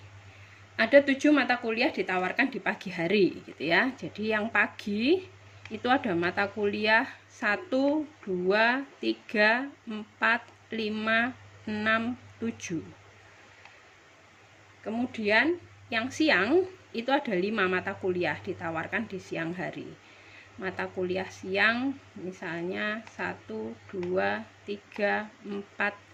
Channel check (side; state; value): both; identical; correlation 1.00